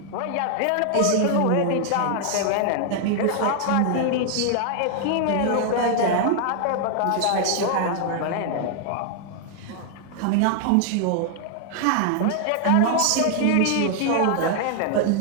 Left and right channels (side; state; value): both; different; correlation 0.00